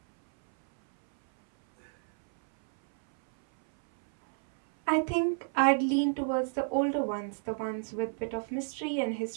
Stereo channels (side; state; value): left; silent; 58 dB below the other